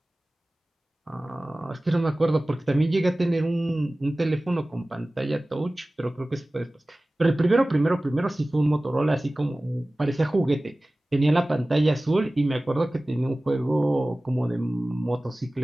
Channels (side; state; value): both; normal; correlation 0.98